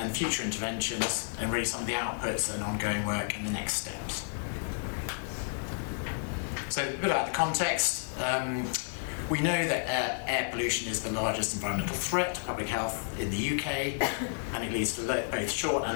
future interventions, and really some of the outputs and ongoing work and the next steps. So a bit about the context. We know that air pollution is the largest environmental threat to public health in the UK, and it leads to both short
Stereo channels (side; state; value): right; silent; digital silence